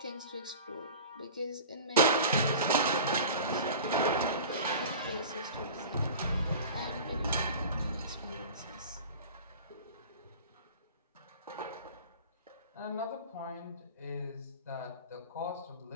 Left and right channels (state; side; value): inverted; both; correlation -0.37